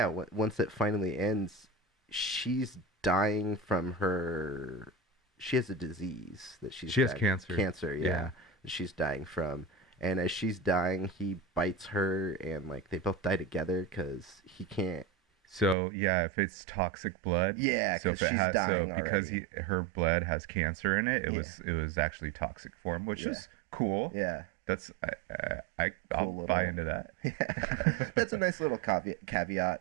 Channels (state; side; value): drops out; left; at 15.8 s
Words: it finally ends, she's dying from her, she has a disease that she has cancer. Yeah. That she's dying from. And as she's dying, he bites her, and like they both die together because he can't. So yeah, if it's toxic blood, yeah, so if it she's has, dying so because her blood has cancer in it, it was actually toxic for him, which is cool. Yeah, that's I'll buy into that. Yeah, that's a nice little